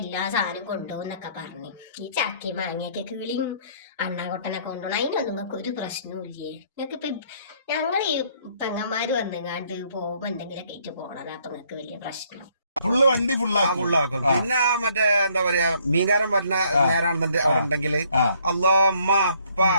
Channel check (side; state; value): both; inverted; correlation -0.65